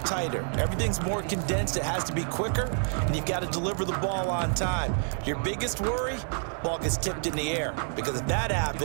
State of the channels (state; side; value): silent; left; 56 dB below the other